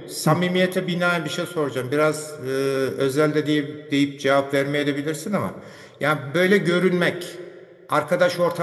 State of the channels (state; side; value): identical; both; correlation 1.00